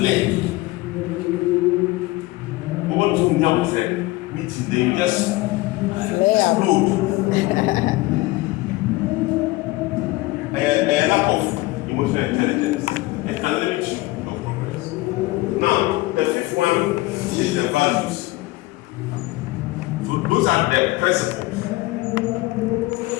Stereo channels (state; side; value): quieter; right; 20.3 dB